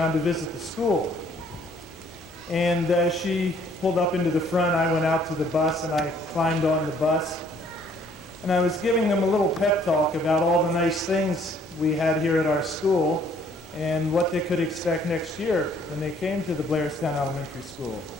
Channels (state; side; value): normal; both; correlation 0.62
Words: to visit the school. And as she pulled up into the front, I went out to the bus and I climbed on the bus. And I was giving them a little pep talk about all the nice things we had here at our school and what they could expect next year when they came to the Blairstown Elementary School.